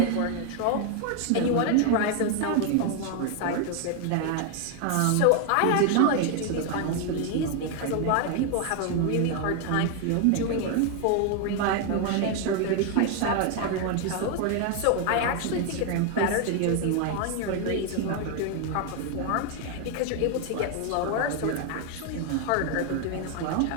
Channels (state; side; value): different; both; correlation 0.01